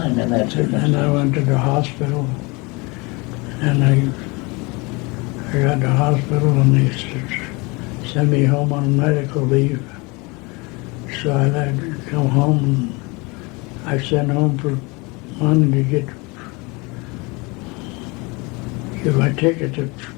in that circumstance. And I went to the hospital, and I got to the hospital, and they sent me home on medical leave. So I had to come home, and I sent home for money to get my ticket to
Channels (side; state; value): right; quieter; 26.8 dB